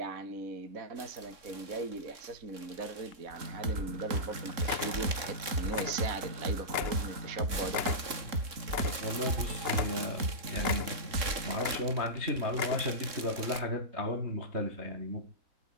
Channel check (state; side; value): late; left; 3.6 ms